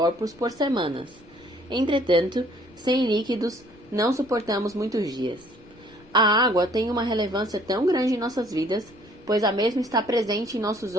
por semanas. Entretanto, sem líquidos, não suportamos muitos dias. A água tem uma relevância tão grande em nossas vidas, pois a mesma está presente em nossos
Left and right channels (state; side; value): noise; left; rumble, 26 dB below the sound